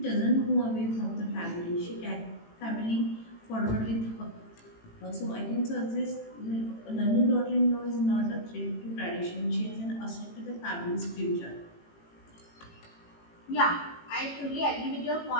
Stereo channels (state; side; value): late; right; 18 ms